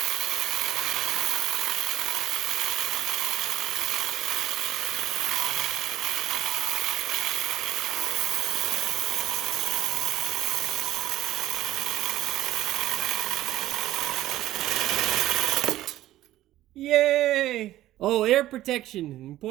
Yay! Oh, air protection,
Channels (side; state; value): left; quieter; 14.6 dB